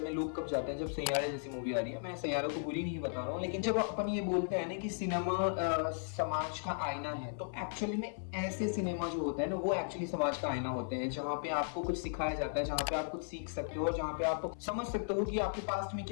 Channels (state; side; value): silent; right; 54 dB below the other